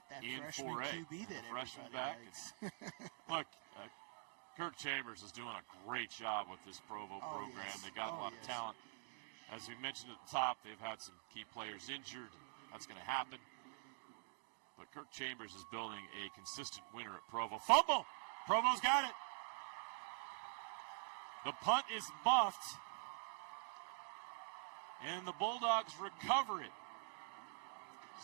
that in freshman 4A. QB that freshman everybody back. likes. Look, Kirk Chambers is doing a great job with this Provo program. Yes. They got a lot of talent. As we mentioned at the top, they've had some key players injured. That's going to happen. But Kirk Chambers is building a consistent winner at Provo. Fumble! Provo's got it. The punt is muffed. And the Bulldogs recover it.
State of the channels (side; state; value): left; silent; digital silence